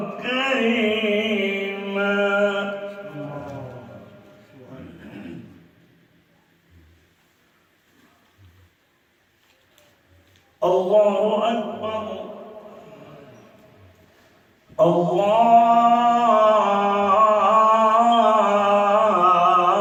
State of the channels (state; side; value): identical; both; correlation 1.00